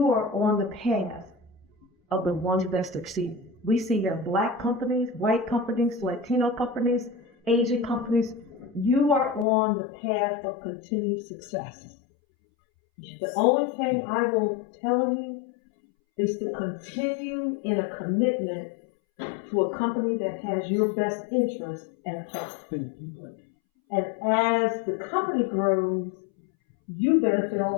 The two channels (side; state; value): right; drops out; at 9.5 s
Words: are on the path of the ones that succeed. We see that Black companies, white companies, Latino companies, Asian companies, you are on the path of continued success. The only thing I will tell you is to continue in a commitment to a company that has your best interest and best. And as the company grows, you benefit